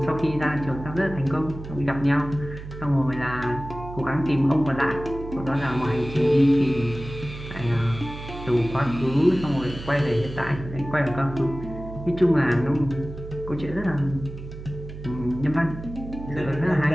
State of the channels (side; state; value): right; noise; hum, 12 dB below the sound